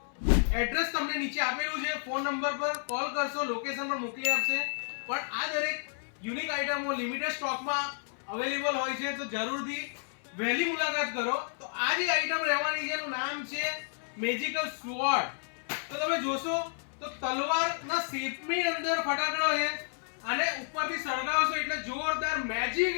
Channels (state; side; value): silent; right; 57 dB below the other